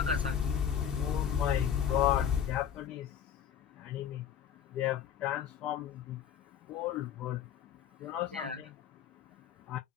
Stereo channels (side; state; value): right; quieter; 8.8 dB